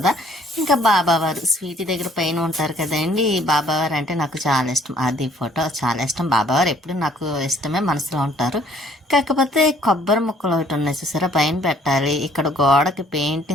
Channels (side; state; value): both; normal; correlation 0.60